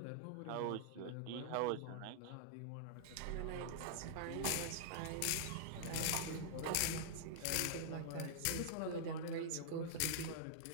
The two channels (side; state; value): both; different; correlation -0.01